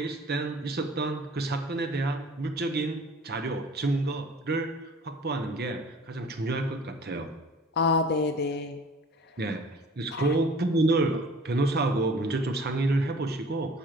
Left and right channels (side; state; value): both; normal; correlation 0.49